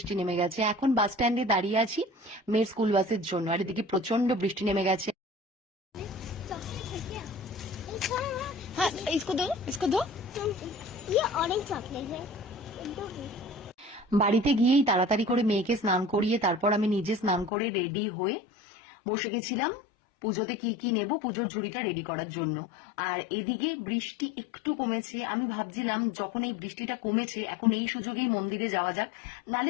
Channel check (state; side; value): drops out; right; at 17.5 s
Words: নেমে গেছে। এখন বাস স্ট্যান্ডে দাঁড়িয়ে আছি মেয়ের স্কুল বাসের জন্য, আর এদিকে প্রচন্ড বৃষ্টি নেমে গেছে। चॉकलेट है क्या? एक और है। হ্যাঁ, ইসকো দো, ইসকো দো। ये ऑरेंज चॉकलेट है। दो है। বাড়িতে গিয়েই তাড়াতাড়ি করে মেয়েকে স্নান করিয়ে তারপর আমি নিজে স্নান করে রেডি হয়ে বসে গেছিলাম পুজোতে কি কি নেব, পুজোর ঝুড়িটা রেডি করার জন্য। আর এদিকে বৃষ্টি একটু কমেছে, আমি ভাবছিলাম যখন এই বৃষ্টিটা কমেছে এখন এই সুযোগেই মন্দিরে যাওয়া যাক,